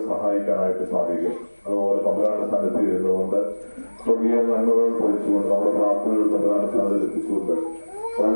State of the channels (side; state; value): both; inverted; correlation -1.00